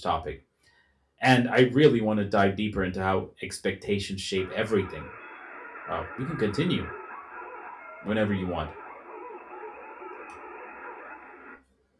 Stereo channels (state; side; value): identical; both; correlation 1.00